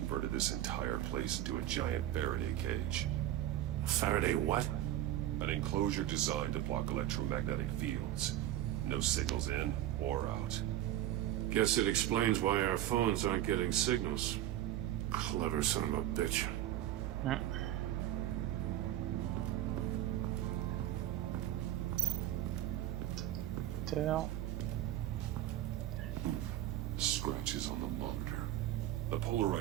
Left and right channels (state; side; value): quieter; left; 13.1 dB